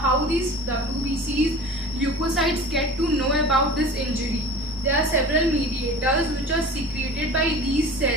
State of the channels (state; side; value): normal; both; correlation 0.39